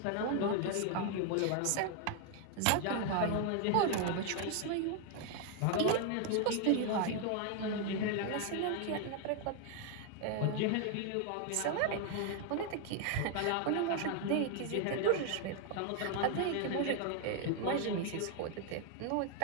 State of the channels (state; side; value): different; both; correlation 0.01